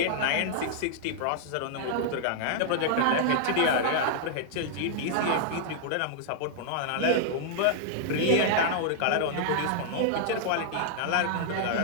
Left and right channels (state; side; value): different; both; correlation -0.01